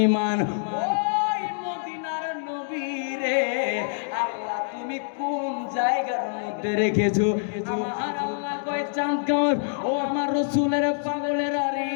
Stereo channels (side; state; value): right; silent; digital silence